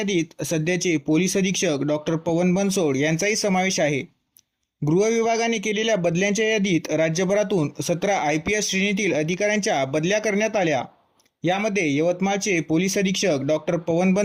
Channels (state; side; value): identical; both; correlation 1.00